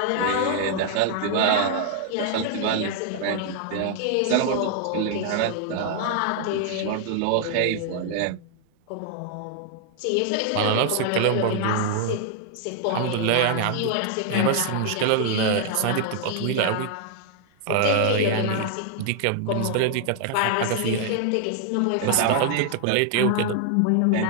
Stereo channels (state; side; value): different; both; correlation 0.00